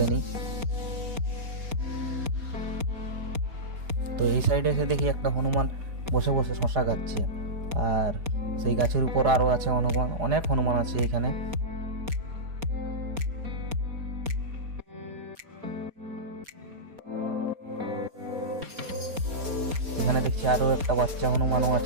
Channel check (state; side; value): late; left; 4.2 ms